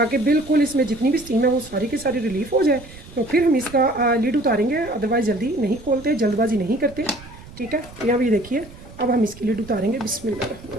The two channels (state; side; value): noise; right; rumble, 18 dB below the sound